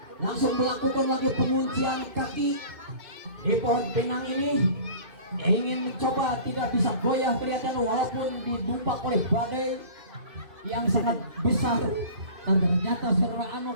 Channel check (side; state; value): left; late; 2.5 ms